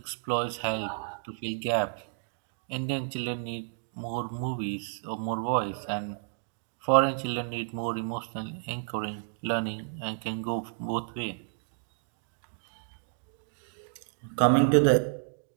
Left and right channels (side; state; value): left; silent; digital silence